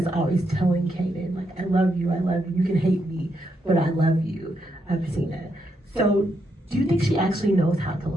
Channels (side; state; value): both; normal; correlation 0.80